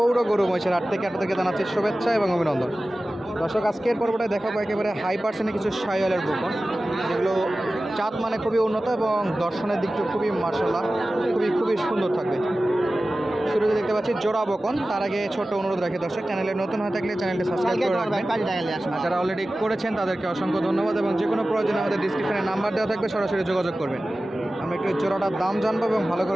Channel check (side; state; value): both; normal; correlation 0.96